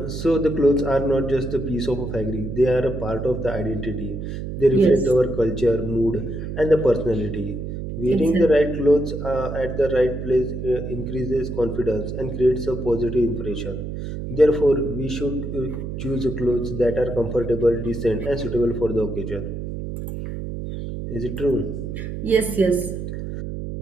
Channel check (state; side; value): noise; right; hum, 6 dB below the sound